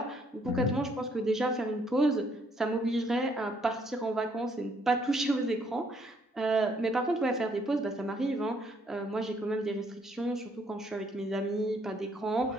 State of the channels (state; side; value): normal; both; correlation 0.68